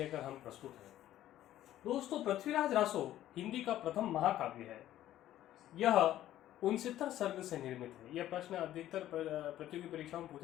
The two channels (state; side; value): quieter; right; 13.1 dB